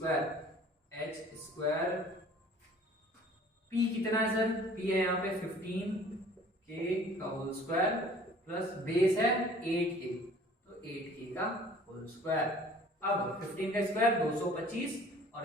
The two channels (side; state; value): both; normal; correlation 0.51